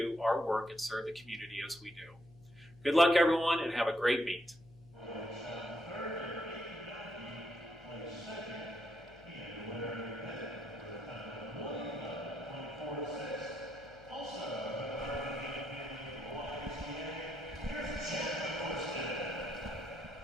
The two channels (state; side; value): noise; left; hum, 23 dB below the sound